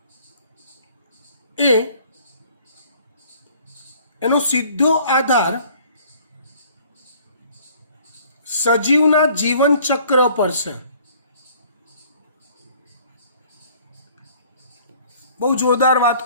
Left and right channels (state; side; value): inverted; both; correlation -0.55